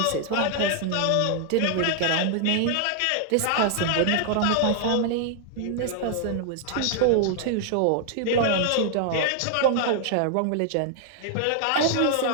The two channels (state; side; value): different; both; correlation 0.00